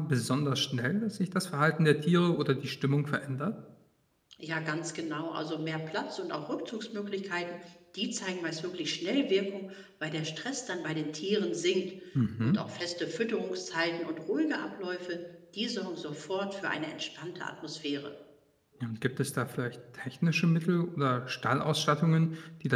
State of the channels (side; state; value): both; identical; correlation 1.00